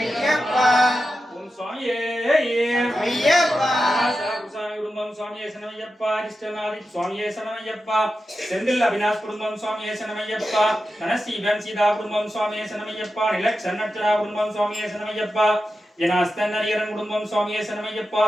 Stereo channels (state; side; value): normal; both; correlation 0.91